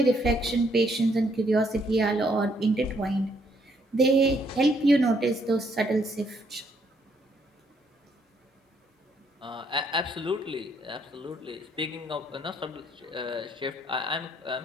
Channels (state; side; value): normal; both; correlation 0.70